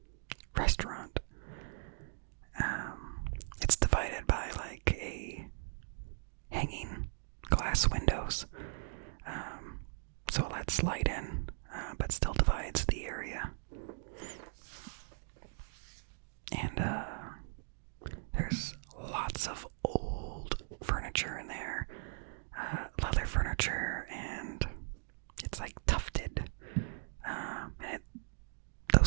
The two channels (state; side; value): silent; left; digital silence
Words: restaurant. It's divided by like a hanging glass windows, so it lets light in, but still divides the area. And there's lots of old furniture in there, leather furniture, and it's like tufted. And